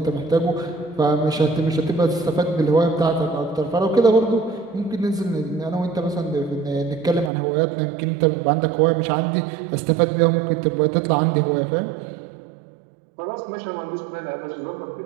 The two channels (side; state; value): left; drops out; at 7.3 s